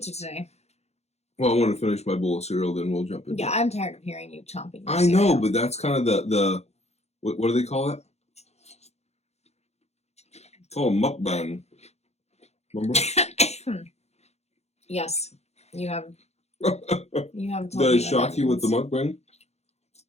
today? Well, I want to finish my bowl of cereal, then we'll jump into it. I'm tired of hearing you chomping. I know, but that's kind of the what do they call it? It's called a mukbang. Remember? Yes, you have. You have. Told Did I shock you with the mukbang?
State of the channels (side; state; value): right; late; 0.31 ms